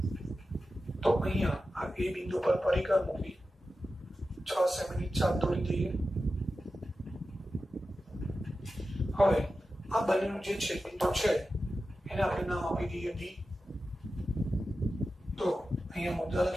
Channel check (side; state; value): both; normal; correlation 0.93